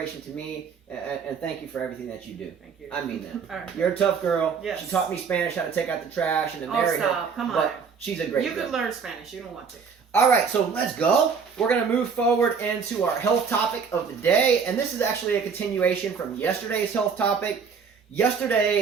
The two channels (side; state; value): left; quieter; 6.0 dB